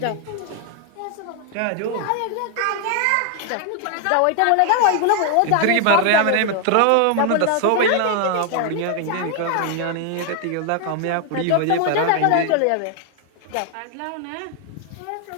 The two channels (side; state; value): both; different; correlation 0.00